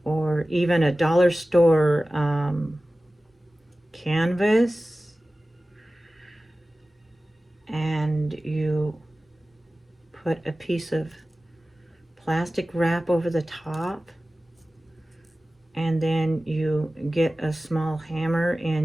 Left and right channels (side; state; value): both; normal; correlation 0.96